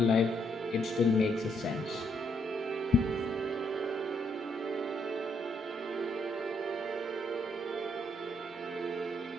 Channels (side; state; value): both; normal; correlation 0.73